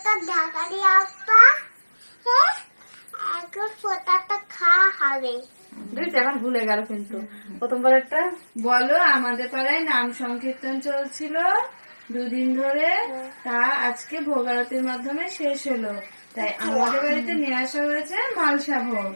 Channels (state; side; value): inverted; both; correlation -1.00